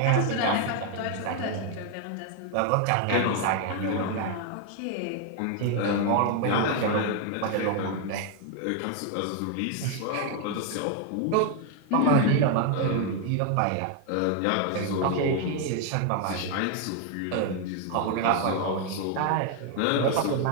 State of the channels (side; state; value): both; different; correlation 0.01